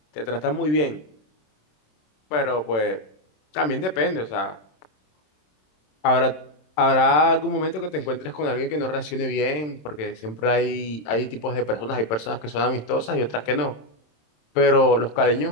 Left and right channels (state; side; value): late; right; 27 ms